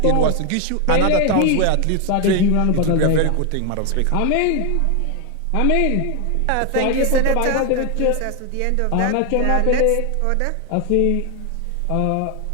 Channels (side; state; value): both; different; correlation 0.01